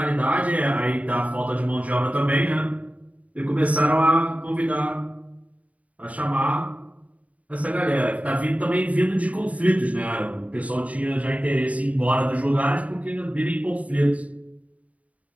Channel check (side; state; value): left; late; 0.069 ms